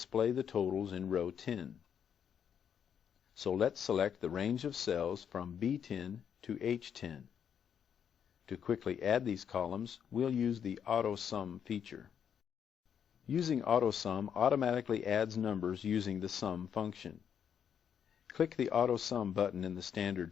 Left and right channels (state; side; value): quieter; right; 8.2 dB